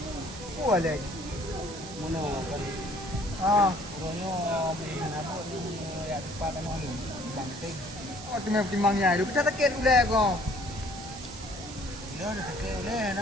Wah lagi. Mana kan? Orangnya main apa ni? Ya lipat kan orang ni. Bangting. Oh tu memang timangnya. Lu kita takut ulah kau. Dah dah tak boleh.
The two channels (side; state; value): right; noise; hiss, 13 dB below the sound